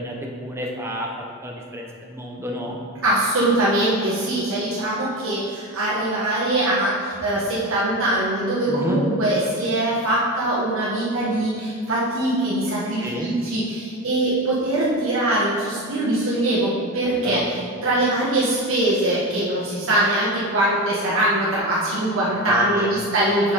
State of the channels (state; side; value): normal; both; correlation 0.21